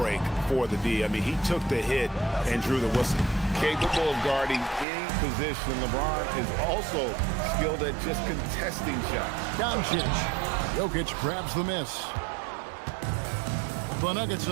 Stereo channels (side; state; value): left; drops out; at 4.9 s